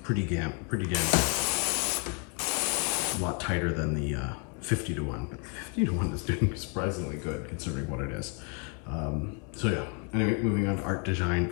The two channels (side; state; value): right; quieter; 37.2 dB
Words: pretty damn good. A lot tighter than the 50 to 1, but 50 to 1 is doing surprisingly good considering what it is. So yeah, anyway, moving on to ArtDeShine